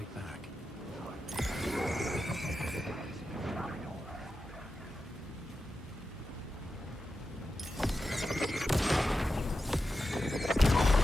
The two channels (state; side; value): normal; both; correlation 0.90